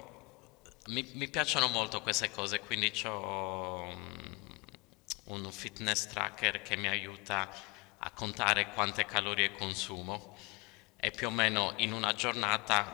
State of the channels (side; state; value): right; quieter; 26.0 dB